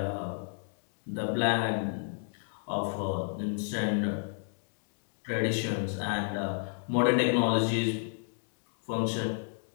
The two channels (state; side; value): silent; right; digital silence